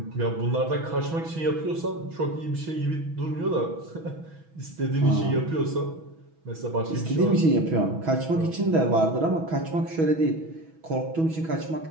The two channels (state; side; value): late; left; 6.2 ms